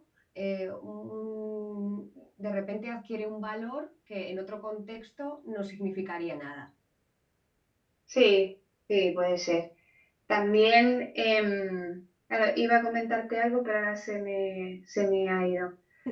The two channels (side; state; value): both; identical; correlation 1.00